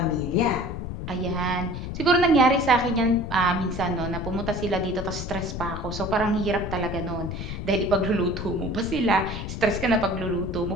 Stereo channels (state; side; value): noise; left; rumble, 6 dB below the sound